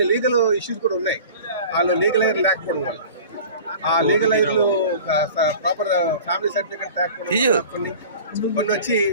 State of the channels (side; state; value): both; inverted; correlation -0.41